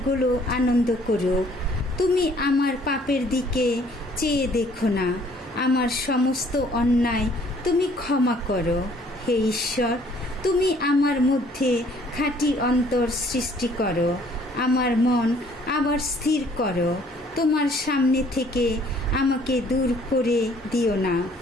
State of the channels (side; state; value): both; normal; correlation 0.60